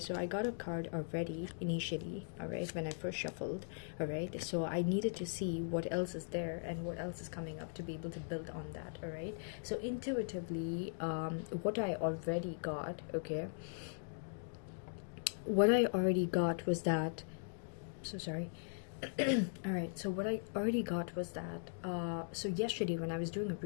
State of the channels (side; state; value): right; silent; digital silence